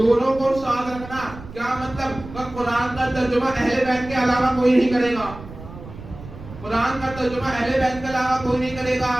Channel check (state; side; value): noise; right; rumble, 15 dB below the sound